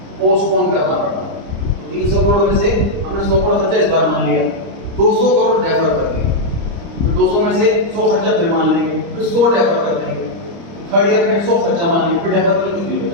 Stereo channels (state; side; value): late; left; 30 ms